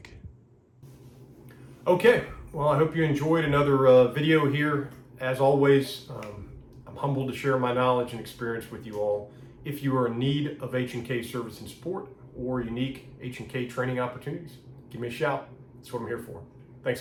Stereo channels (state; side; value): identical; both; correlation 1.00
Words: Okay, well, I hope you enjoyed another video here. As always, I'm humbled to share my knowledge and experience with you all. If you are in need of H&K service and support or unique H&K training opportunities, give me a shout. That's what I'm here for.